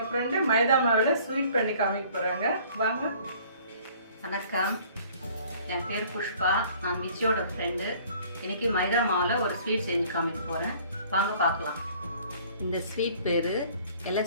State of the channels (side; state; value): both; inverted; correlation -0.54